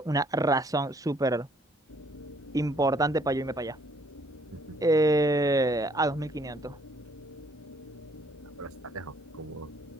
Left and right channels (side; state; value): both; normal; correlation 0.64